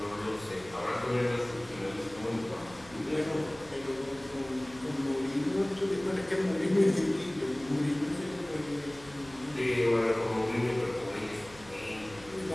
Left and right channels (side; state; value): right; noise; hum, 22 dB below the sound